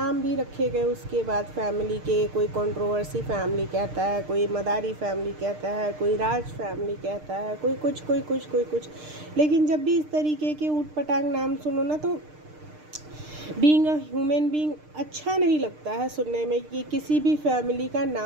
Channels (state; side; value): late; left; 6.6 ms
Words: भी रखे गए उसके बाद फैमिली के। कोई कंट्रोवर्सी फैमिली कहता है, कोई मदारी फैमिली कहता है, कोई राज फैमिली कहता है, कोई कुछ। लेकिन जब भी इस तरीके के ऊट पटांग नाम सुनो ना, तो बीइंग अ ह्यूमन बीइंग अच्छा नहीं लगता है सुनने में कि किसी भी फैमिली का